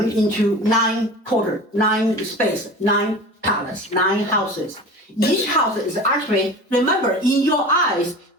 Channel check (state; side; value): normal; both; correlation 0.35